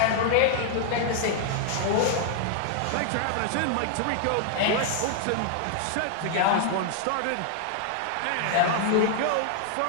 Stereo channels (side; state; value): both; different; correlation 0.00